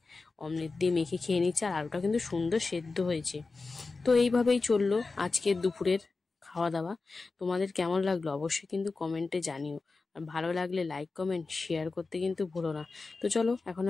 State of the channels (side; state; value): right; quieter; 3.9 dB